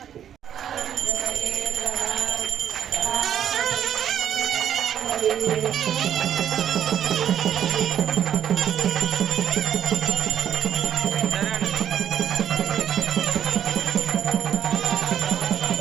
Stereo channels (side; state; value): left; quieter; 9.6 dB